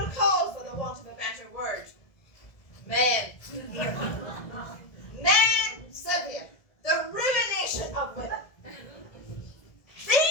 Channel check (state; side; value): late; right; 1.7 ms